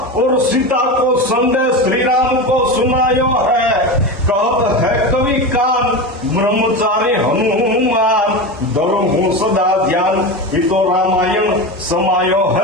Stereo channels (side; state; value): both; normal; correlation 0.23